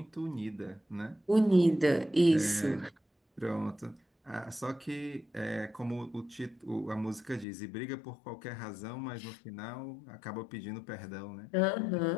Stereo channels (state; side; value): drops out; right; at 7.5 s